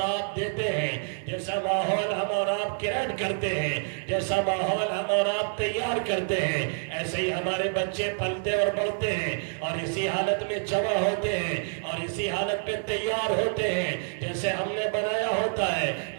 آپ دیتے ہیں، جیسا ماحول ہم اور آپ کریٹ کرتے ہیں، جیسا ماحول ہم اور آپ تیار کرتے ہیں، ایسے ہی ہمارے بچے پلتے اور بڑھتے ہیں اور اسی حالت میں جمع ہوتے ہیں اور اسی حالت پہ تیار ہوتے ہیں جیسے ہم نے بنایا ہوتا ہے،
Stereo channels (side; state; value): left; silent; 60 dB below the other